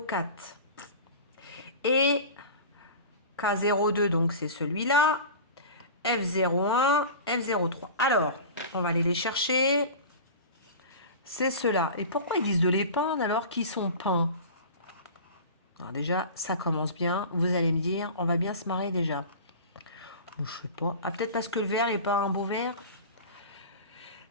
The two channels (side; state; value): both; inverted; correlation -0.35